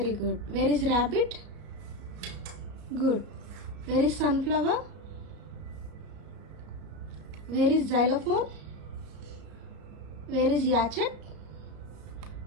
good. Where is rabbit? Good. Where is sunflower? Where is xylophone? Where is yacht?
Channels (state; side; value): late; left; 34 ms